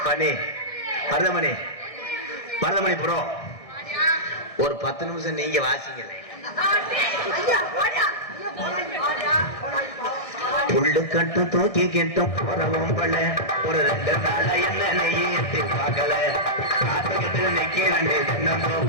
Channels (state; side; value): late; right; 1.6 ms